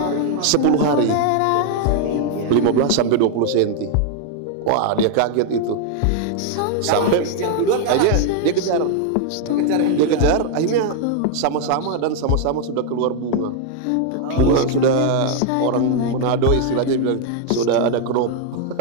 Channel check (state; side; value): different; both; correlation 0.00